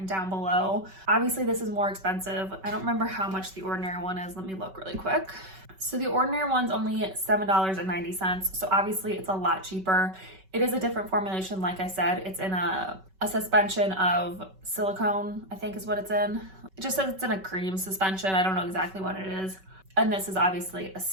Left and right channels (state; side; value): late; left; 5.3 ms